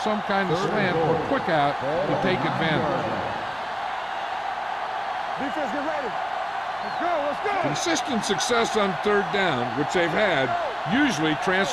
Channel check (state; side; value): identical; both; correlation 1.00